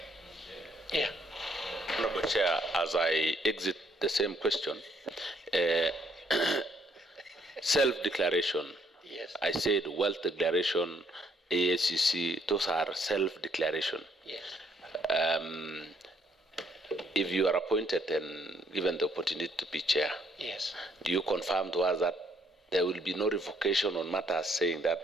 Yeah. Honorable Chair, as I exit the same question, self-declaration. Yes. I said wealth declaration, ASCC, those are self-declaration. Yes. If you are appointed and given the opportunity to be chair, yes, do you confirm to us that there will be no revocation on matters saying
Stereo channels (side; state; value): both; normal; correlation 0.69